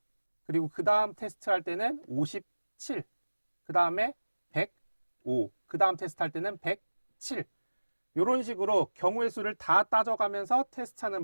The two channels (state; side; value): inverted; both; correlation -1.00